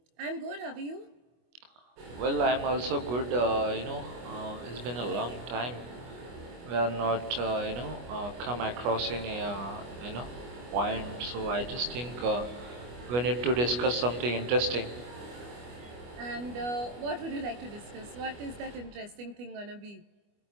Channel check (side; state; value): left; late; 25 ms